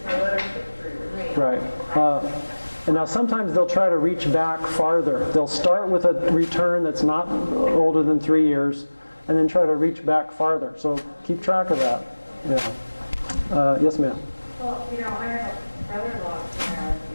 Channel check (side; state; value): both; inverted; correlation -1.00